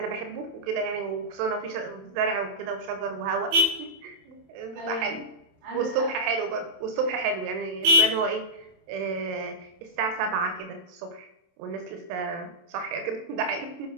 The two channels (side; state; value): left; late; 27 ms